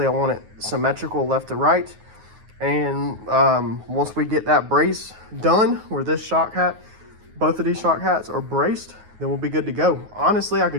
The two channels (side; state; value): left; late; 9.4 ms